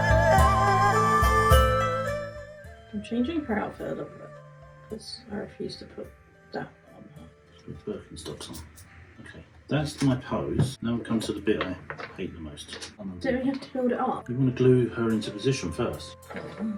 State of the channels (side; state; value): both; identical; correlation 1.00